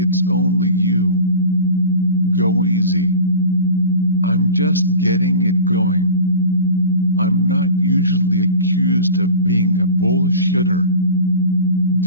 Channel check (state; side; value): inverted; both; correlation -0.37